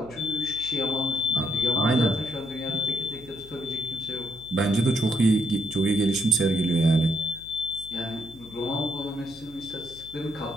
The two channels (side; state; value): left; noise; hum, 21 dB below the sound